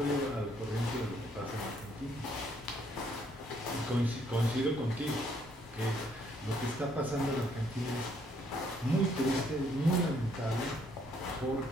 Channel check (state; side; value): normal; both; correlation 0.68